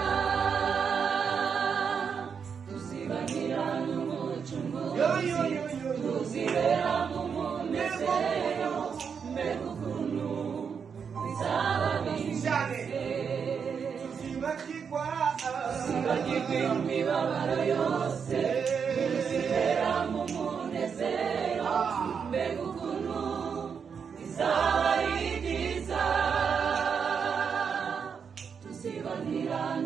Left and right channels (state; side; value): quieter; left; 6.5 dB